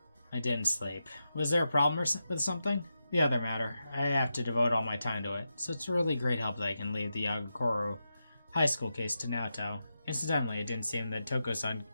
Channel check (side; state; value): both; inverted; correlation -0.88